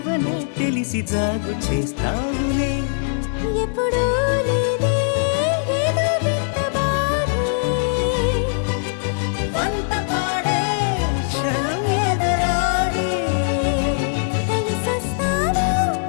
తెలిసి జాగు చేస్తావులే ఎప్పుడూ లేదే ఏదో వింత బాధే వంత పాడే క్షణం ఎదరాడే కలిసొస్తావో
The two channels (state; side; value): silent; right; digital silence